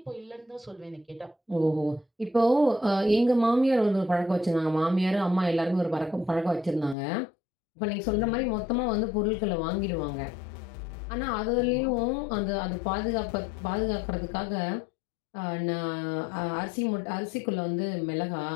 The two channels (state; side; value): drops out; right; at 7.0 s